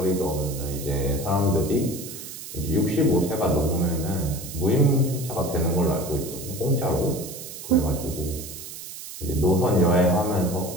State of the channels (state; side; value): noise; right; hiss, 11 dB below the sound